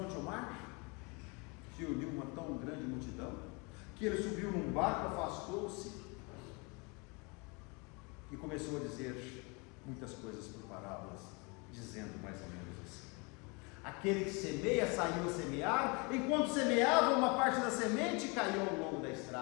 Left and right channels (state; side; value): quieter; right; 30.1 dB